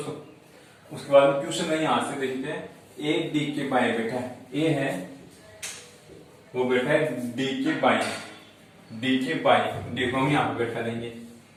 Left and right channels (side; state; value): both; identical; correlation 1.00